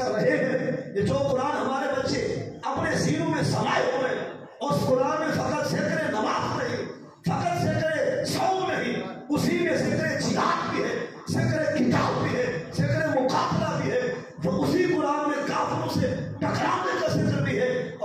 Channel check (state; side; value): identical; both; correlation 1.00